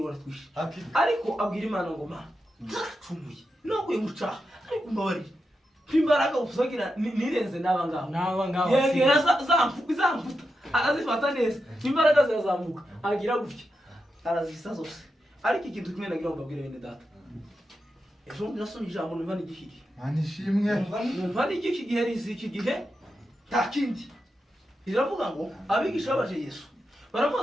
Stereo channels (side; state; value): both; normal; correlation 0.88